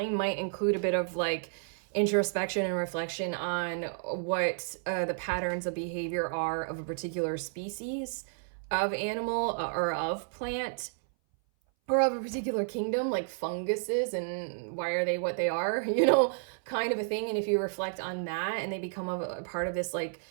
might include a bit of like introspection and reflection on what the patterns of behavior are of a particular species of animal, or of plant, or of a particular kingdom, like funguses, and why are they what they are, kind of a thing. And if you reflect on that, and they become a part of this like,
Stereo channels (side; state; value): left; silent; 57 dB below the other